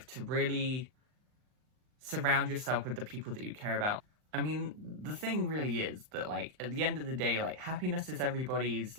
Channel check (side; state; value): left; late; 39 ms